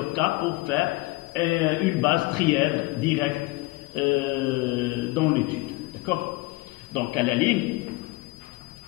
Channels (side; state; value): right; quieter; 22.3 dB